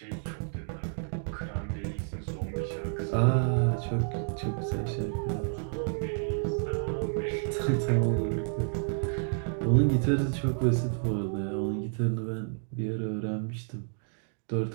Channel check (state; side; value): silent; left; digital silence